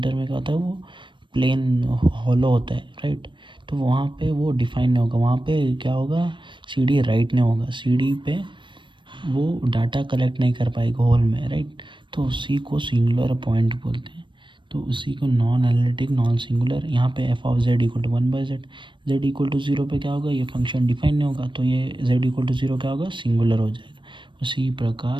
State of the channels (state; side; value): late; left; 0.23 ms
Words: में क्या होता है? वो प्लेन हॉलो होता है, राइट। तो वहाँ पे वो डिफाइन नहीं होगा, वहाँ पे क्या होगा? सीढ़ी राइट नहीं होगा, सीढ़ी पे वो डाटा कलेक्ट नहीं कर पाएगा होल में, राइट। तो उसी को सिंगुलर पॉइंट बोलते हैं। तो उसी को नॉन एनालिटिक, नॉन सिंगुलर। यहाँ पे f of z equal to 1/z, z equal to 0 पे क्या होगा? ये फंक्शन डिफाइन नहीं होगा, तो ये जेड इक्वल टू 0 क्या होगा? सिंगुलर हो जाएगा। उसी